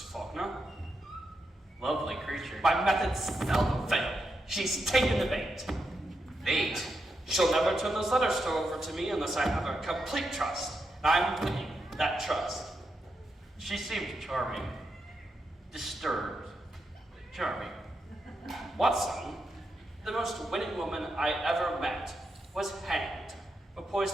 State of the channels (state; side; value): normal; both; correlation 0.84